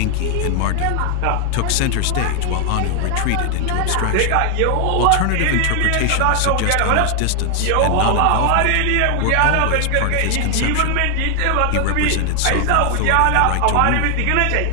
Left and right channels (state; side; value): different; both; correlation 0.00